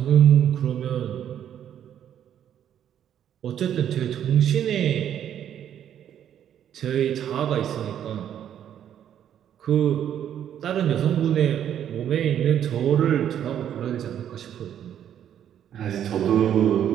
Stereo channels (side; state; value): left; quieter; 9.9 dB